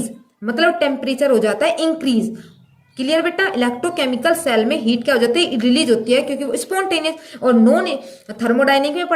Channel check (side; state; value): both; identical; correlation 1.00